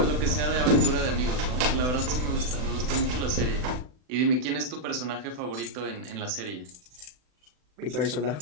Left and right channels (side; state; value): left; late; 40 ms